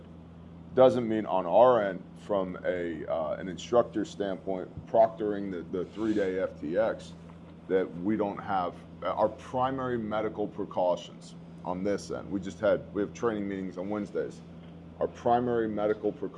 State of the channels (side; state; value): both; identical; correlation 1.00